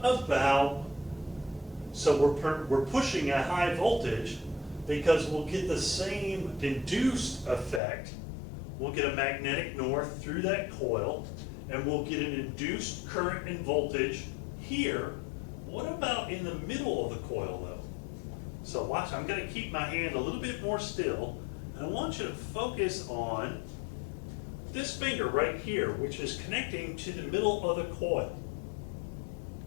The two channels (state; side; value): drops out; right; at 7.8 s